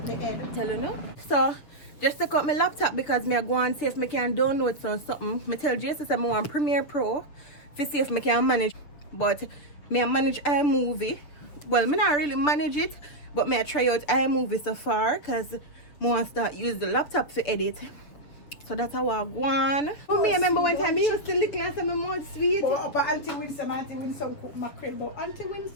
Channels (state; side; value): late; right; 7.1 ms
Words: my head. Tell you no? So, just to cut my laptop because I go and see if I can download something. I tell Jason I want Premiere Pro to see if I can manage. But I manage iMovie. Well, I not really manage it, but I try out iMovie so far because I want to start use the laptop to edit. So that's how I go on. Oh, me remember one time you used to lick last time my mouth sweet. But Auntie Winsome cook mackerel. But Auntie